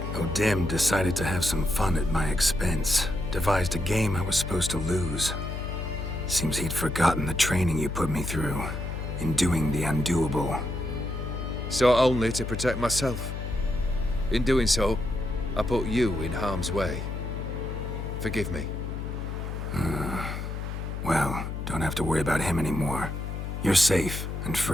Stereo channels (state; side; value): noise; left; hum, 5 dB below the sound